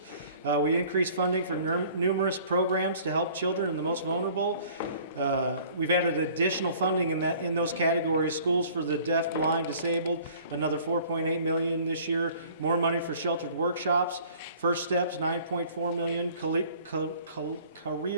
We increased funding for numerous programs to help children and the most vulnerable. We've added additional funding in those categories: schools for the deaf, blind, disabled, another $4.8 million this year. More money for sheltered workshops. First Steps, $9.4 million.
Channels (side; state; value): both; inverted; correlation -0.52